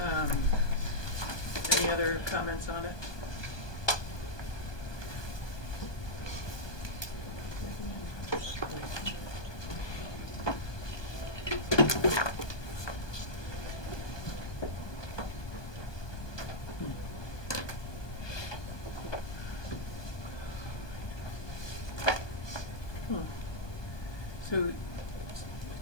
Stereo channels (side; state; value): right; late; 1.2 ms